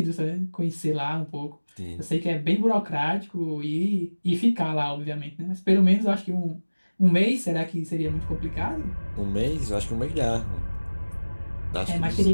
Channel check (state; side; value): inverted; both; correlation -1.00